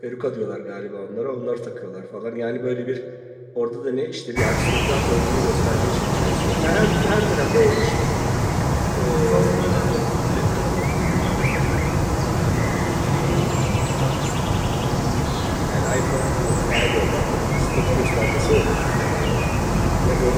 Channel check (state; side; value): identical; both; correlation 1.00